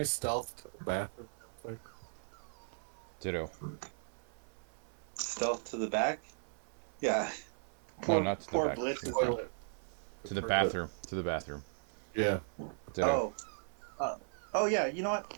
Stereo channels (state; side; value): silent; left; 53 dB below the other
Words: stealth to the bathroom real quick? Ditto. Stealth to the back. Yeah. No, Poor not to the poor back. Blitz To the is. front. Toilet. To the bathroom. To the bathroom. Yeah. Ditto. Oh. Uh, oh yeah. You know